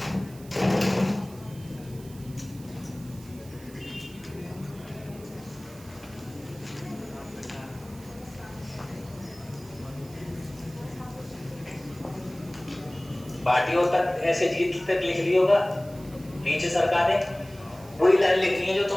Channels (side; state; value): right; noise; hiss, 22 dB below the sound